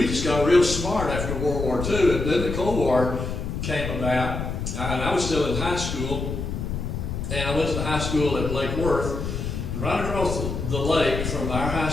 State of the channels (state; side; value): noise; left; rumble, 4 dB below the sound